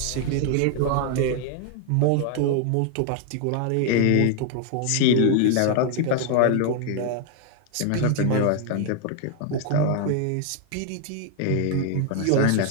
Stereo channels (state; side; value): different; both; correlation 0.00